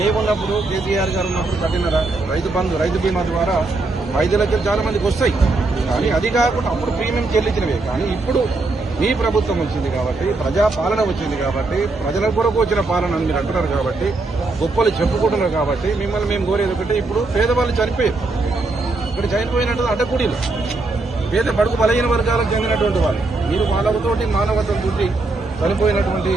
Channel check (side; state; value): left; quieter; 3.4 dB